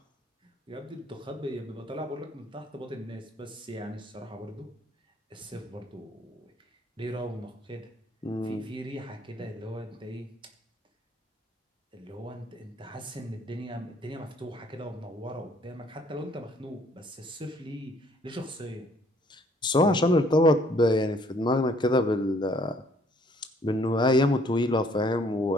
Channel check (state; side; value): normal; both; correlation 0.62